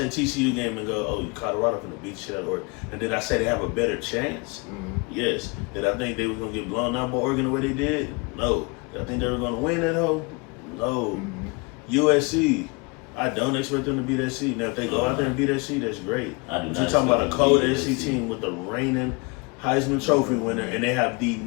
TCU game and go, oh, Colorado going to beat the shit out of Oregon. And did I say they have a better chance? Yes. Did I think they were going to get blown out by Oregon the way they did? No. Did I think they were going to win that hoe? No. USC. I don't expect them to beat SC. Now, if they go out there and beat SC, that's great. But you're talking about a cold SC team with the reigning Heisman Trophy winner, and they have the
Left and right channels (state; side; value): quieter; right; 29.4 dB